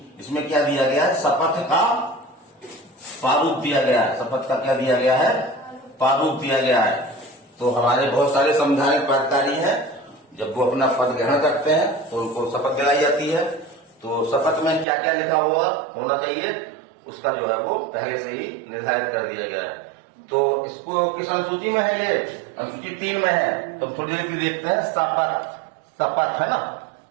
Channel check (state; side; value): drops out; left; at 14.9 s